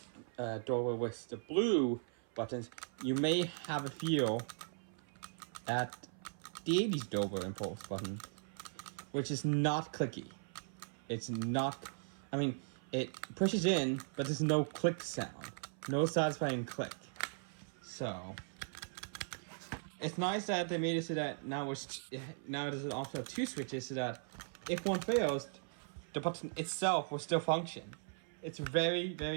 Dover with the blue buttons, you may have a feel at the 80s Dover Impulse button, which is not clicky. It's not, I mean, it pushes in, but there's no click sound. No satisfying click. So it's nice that they made it so that now there's an option of two switches so that if one fails, the button itself will still function. It's very,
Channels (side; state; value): left; silent; 52 dB below the other